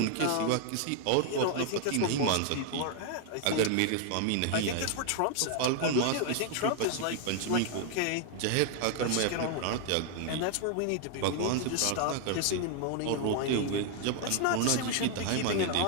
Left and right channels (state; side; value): different; both; correlation 0.00